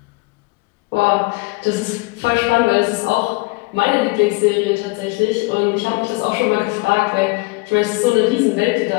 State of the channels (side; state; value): right; quieter; 25.4 dB